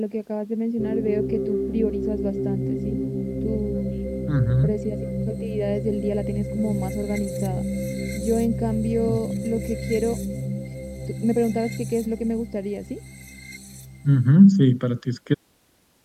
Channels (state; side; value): identical; both; correlation 1.00